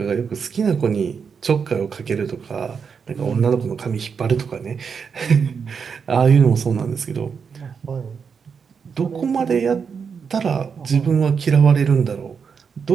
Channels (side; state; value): left; quieter; 6.2 dB